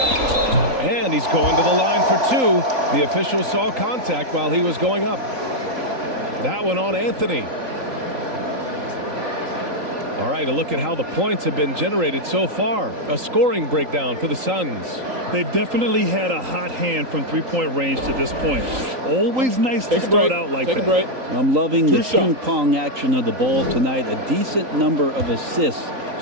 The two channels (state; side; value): late; left; 3.8 ms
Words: And he's going to the line for 2. The official saw contact while he was going up. That one on Anthony. All right, a look at how the points have been generated so far. A scoring breakdown for the Suns. They've definitely had a hot hand from three-point range to this point. Always nice to start out like that. Take a break. I'm loving the True ping pong action of the ball tonight. A decent number of assists